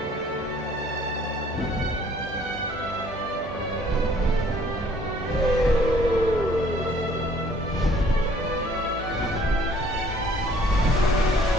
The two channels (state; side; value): normal; both; correlation 0.58